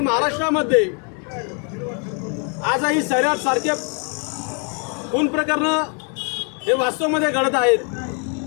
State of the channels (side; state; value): right; quieter; 38.9 dB